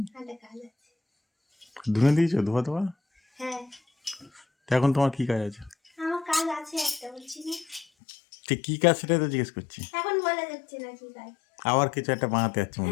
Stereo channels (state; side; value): drops out; right; at 7.9 s